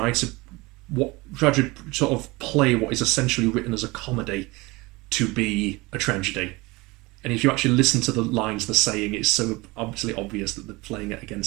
to sort of play what is essentially written as a comedy to be a tragedy. And if you actually listen to the lines they're saying, it's so obviously obvious that they're playing it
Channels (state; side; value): quieter; left; 23.2 dB